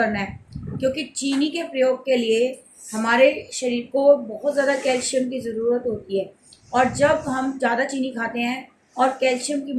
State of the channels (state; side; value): identical; both; correlation 1.00